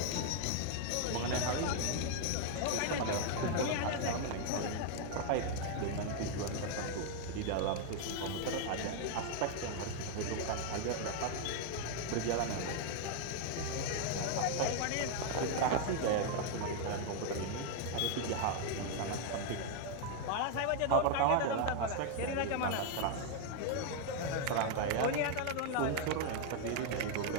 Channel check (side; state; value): both; different; correlation 0.00